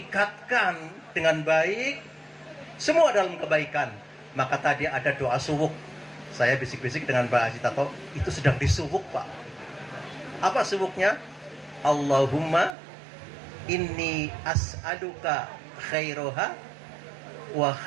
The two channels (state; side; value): drops out; left; at 12.8 s